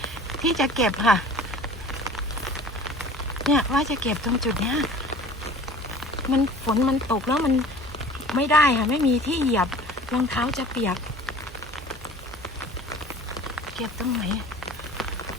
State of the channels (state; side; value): normal; both; correlation 0.44